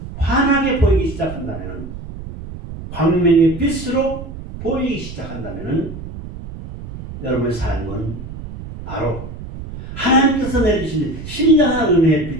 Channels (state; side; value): noise; right; rumble, 11 dB below the sound